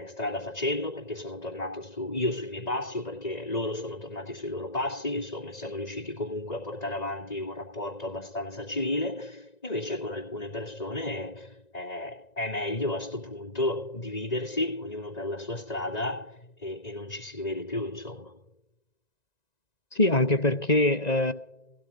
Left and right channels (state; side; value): late; right; 1.9 ms